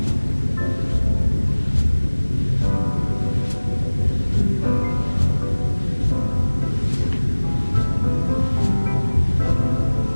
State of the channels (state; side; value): inverted; both; correlation -1.00